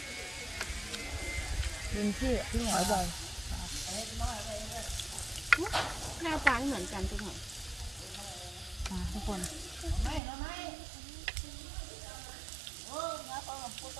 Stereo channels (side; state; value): left; drops out; at 10.2 s